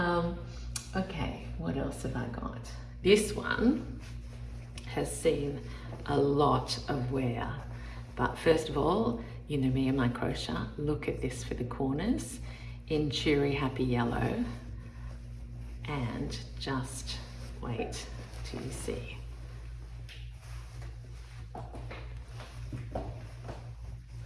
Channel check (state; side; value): identical; both; correlation 1.00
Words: Okay, what else have I got? This one has seen a lot of wear, but first of all, you know me and my crochet. Look at this for the corners in cheery happy yellow, and just wait till you see.